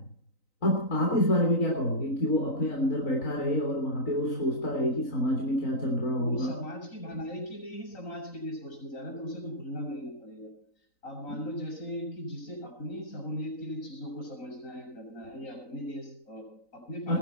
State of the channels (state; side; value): late; right; 3.9 ms